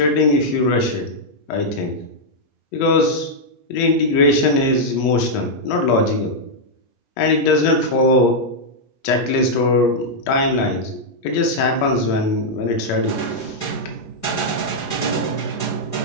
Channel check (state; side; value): late; right; 8.4 ms